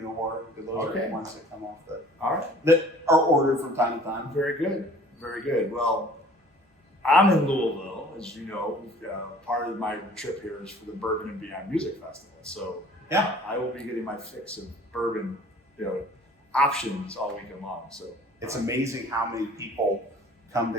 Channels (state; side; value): normal; both; correlation 0.50